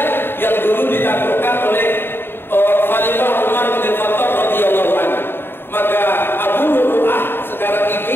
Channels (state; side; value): late; right; 0.10 ms